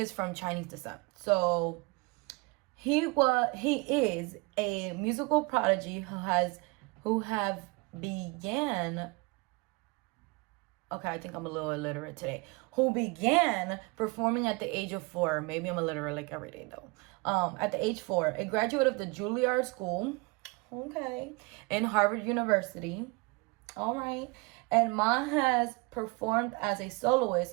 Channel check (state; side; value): quieter; left; 27.8 dB